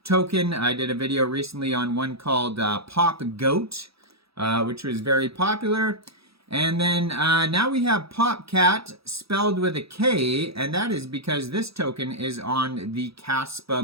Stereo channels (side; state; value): left; late; 0.77 ms